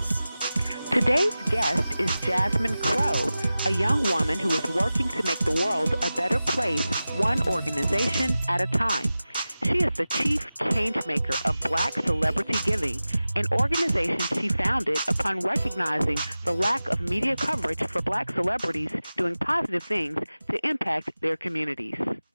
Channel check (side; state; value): both; inverted; correlation -0.95